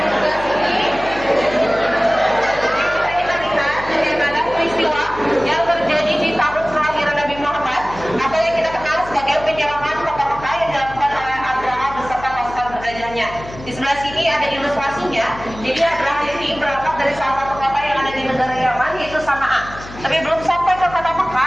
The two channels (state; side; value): noise; left; hum, 15 dB below the sound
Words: Di sebelah sini ada ilustrasinya. Jadi Abraham ini berangkat dari salah satu kota yang ada di negara Yaman, yaitu Sana'a. Tapi belum sampai ke kota